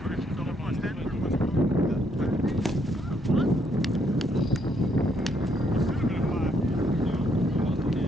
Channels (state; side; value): normal; both; correlation 0.72